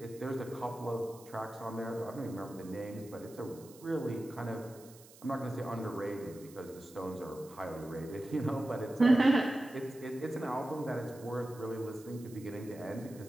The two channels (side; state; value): right; noise; hiss, 21 dB below the sound